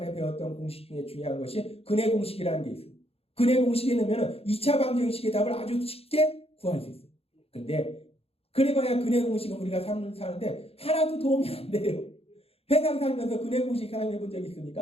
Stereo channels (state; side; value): late; right; 0.29 ms